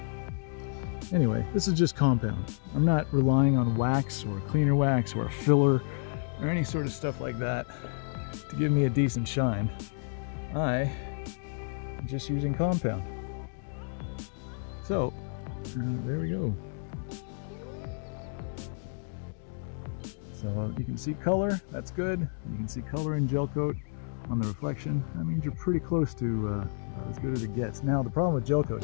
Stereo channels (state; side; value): silent; right; digital silence